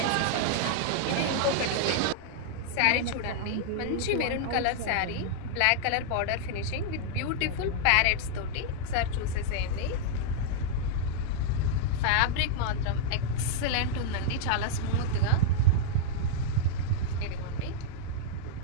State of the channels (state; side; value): different; both; correlation -0.01